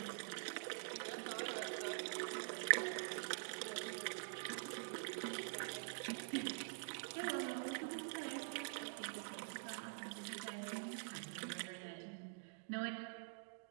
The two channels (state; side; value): silent; left; digital silence